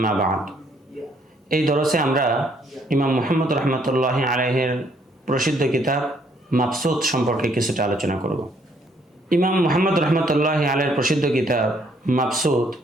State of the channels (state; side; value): normal; both; correlation 0.67